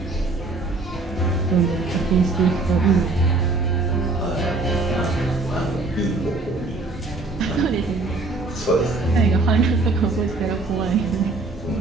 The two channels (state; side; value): quieter; left; 3.4 dB